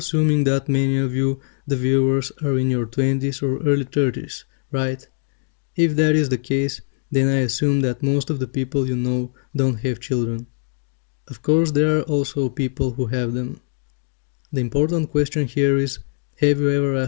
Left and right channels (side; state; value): right; silent; digital silence